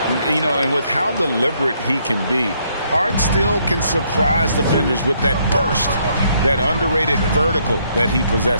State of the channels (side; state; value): both; inverted; correlation -0.71